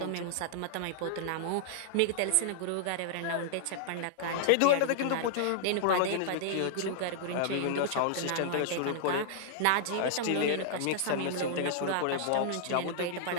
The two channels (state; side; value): different; both; correlation -0.01